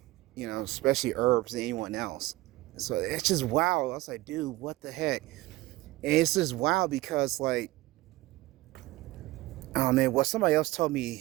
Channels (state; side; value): quieter; left; 19.1 dB